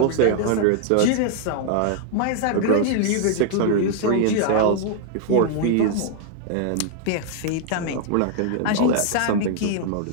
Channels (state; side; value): different; both; correlation 0.00